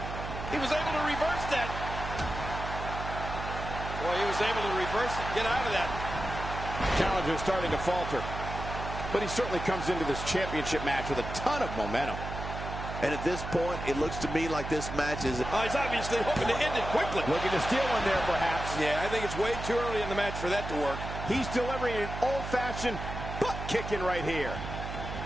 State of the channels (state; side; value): noise; right; hum, 7 dB below the sound